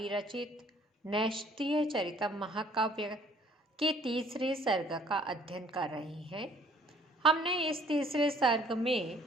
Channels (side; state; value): both; normal; correlation 0.58